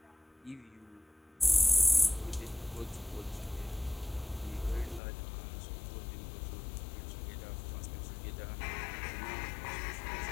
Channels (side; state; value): right; drops out; at 5.0 s